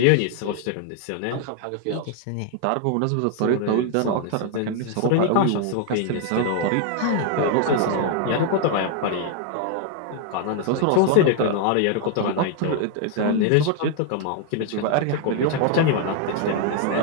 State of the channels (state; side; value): different; both; correlation 0.00